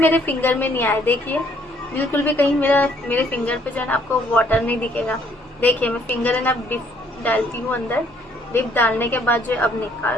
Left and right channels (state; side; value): normal; both; correlation 0.65